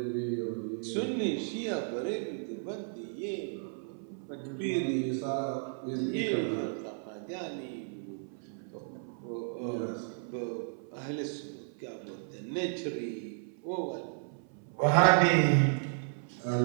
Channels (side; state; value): left; silent; 55 dB below the other